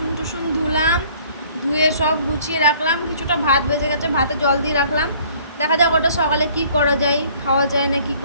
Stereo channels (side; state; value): both; inverted; correlation -0.56